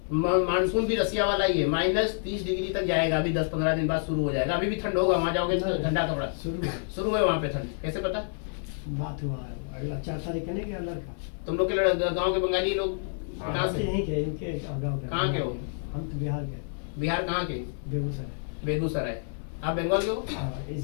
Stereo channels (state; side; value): silent; right; digital silence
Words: मानसून भी रसिया वाला ही है, -30 डिग्री तक जाएगा, अभी 10-15 दिन बाद शुरू हो जाएगा। अभी भी ठंड होगा, वहाँ जाओगे तो ठंडा कपड़ा शुरू है वहाँ पे ठंड, कैसे पता? बात हुआ है, अगला 4 तारीख का नहीं गया लड़का। तुम लोग के गाँव के बंगाली लोग कहाँ से? यहीं के, इनके गाँव के। कहाँ के हो? हम तो बिहार के। बिहार कहाँ के? बेगूसराय। बेगूसराय। आप बंगाल के हो? हाँ,